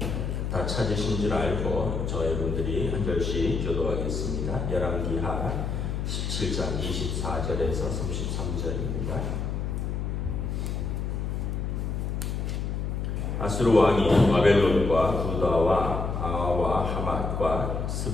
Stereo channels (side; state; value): left; noise; hum, 2 dB below the sound